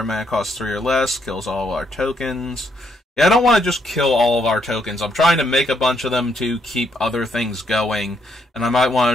mana cost 3 or less, kills all of our tokens. Yeah, I don't want to just kill all of our tokens. I'm trying to make a bunch of them to keep other things going, and I might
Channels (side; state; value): both; normal; correlation 0.74